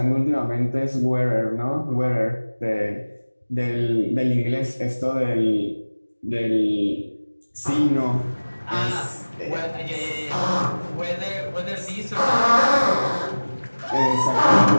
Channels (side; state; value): both; inverted; correlation -1.00